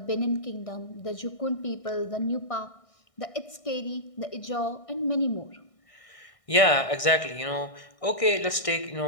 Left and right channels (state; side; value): late; right; 1.6 ms